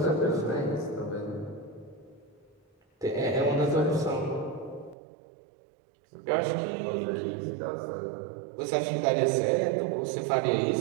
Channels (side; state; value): left; drops out; at 5.0 s